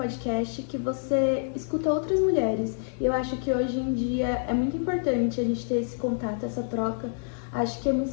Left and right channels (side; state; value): right; silent; digital silence